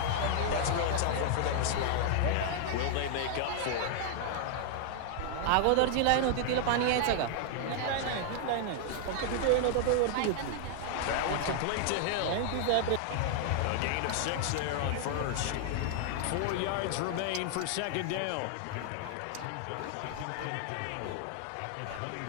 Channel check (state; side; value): different; both; correlation 0.00